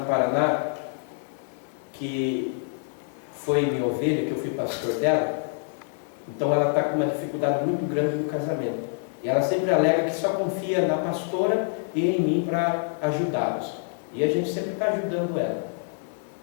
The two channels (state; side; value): silent; right; 61 dB below the other